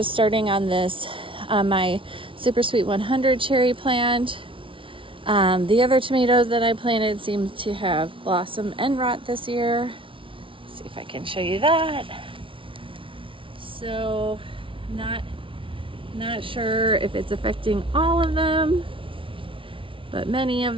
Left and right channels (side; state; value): left; late; 0.25 ms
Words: starting on this, my Super Sweet 100 cherry plant. The other tomatoes that I planted seem to have blossom and rot this year. Let's see if I can show you that. So not sure if it's affecting all of them, but many of